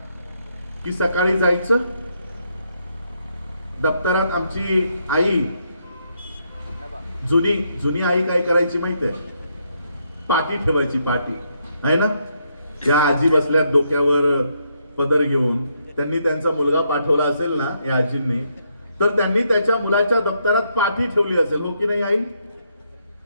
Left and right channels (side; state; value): both; inverted; correlation -0.76